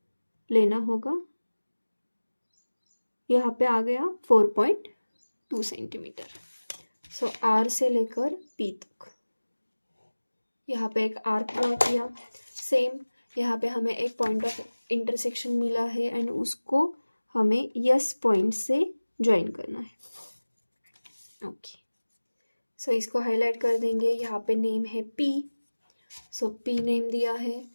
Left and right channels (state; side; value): inverted; both; correlation -1.00